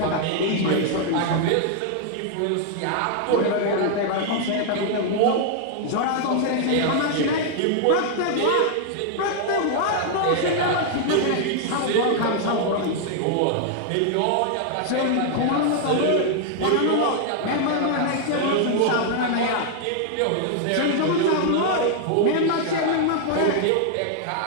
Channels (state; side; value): different; both; correlation 0.00